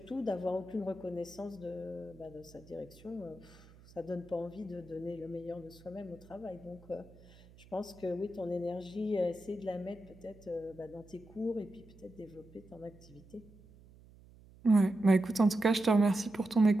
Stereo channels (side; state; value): right; noise; hum, 23 dB below the sound